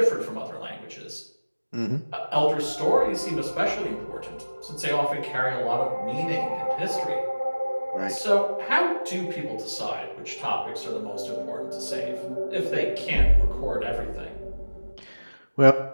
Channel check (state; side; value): inverted; both; correlation -1.00